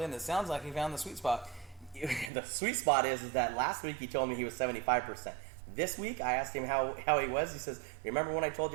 in. It sounds like he found the sweet spot. The sweet spot is that last week he told me he was 75%. This week, I asked him how he was. He says, remember when I told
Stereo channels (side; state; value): left; drops out; at 2.3 s